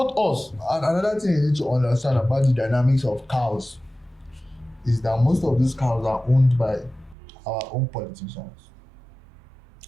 us. Another thing you need to understand about the dynamics of cows is that most of these cows are owned by our own politicians.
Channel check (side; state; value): left; drops out; at 7.2 s